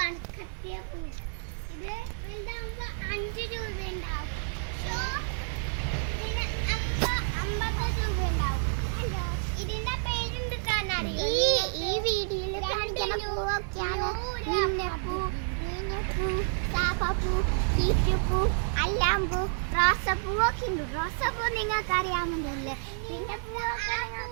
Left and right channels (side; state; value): left; silent; digital silence